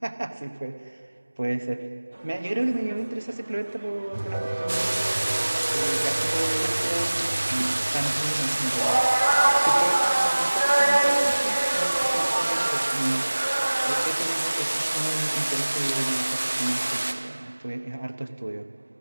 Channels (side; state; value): both; inverted; correlation -1.00